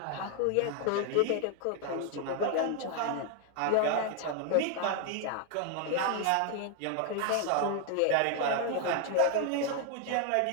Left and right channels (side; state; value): both; different; correlation 0.00